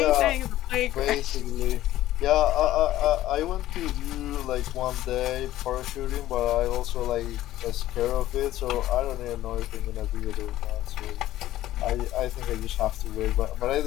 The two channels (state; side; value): quieter; right; 14.4 dB